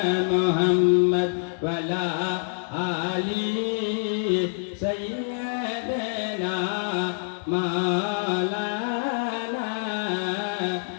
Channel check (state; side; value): silent; right; digital silence